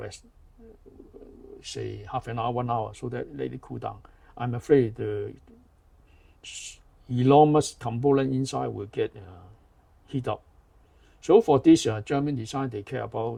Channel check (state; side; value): identical; both; correlation 1.00